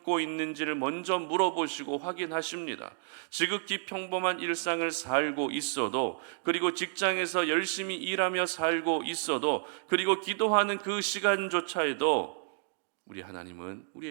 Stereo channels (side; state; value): left; silent; digital silence